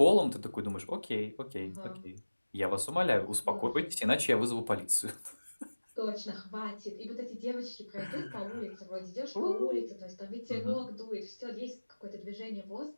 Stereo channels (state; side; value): inverted; both; correlation -1.00